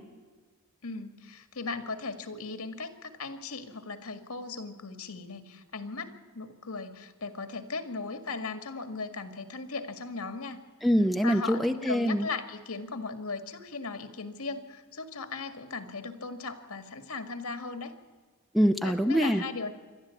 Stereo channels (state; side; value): normal; both; correlation 0.65